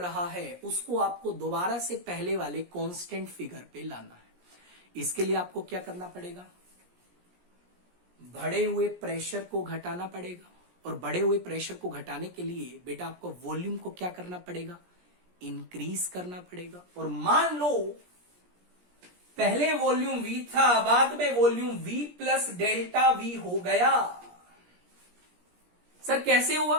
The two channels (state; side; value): late; left; 17 ms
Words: है, उसको आपको दोबारा से पहले वाले कांस्टेंट फिगर पे लाना है। इसके लिए आपको क्या करना पड़ेगा, बढ़े हुए प्रेशर को घटाना पड़ेगा, और बढ़े हुए प्रेशर को घटाने के लिए बेटा आपको वॉल्यूम को क्या करना पड़ेगा, इंक्रीज करना पड़ेगा। और मान लो पहले वॉल्यूम V था, बाद में volume V plus delta V हो गया। सर कैसे हुआ,